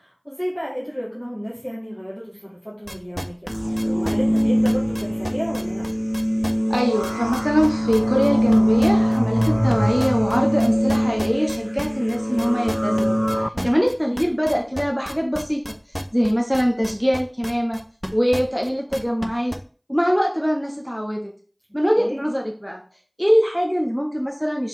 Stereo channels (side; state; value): both; identical; correlation 1.00